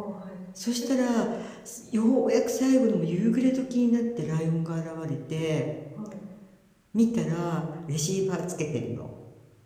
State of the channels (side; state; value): both; identical; correlation 1.00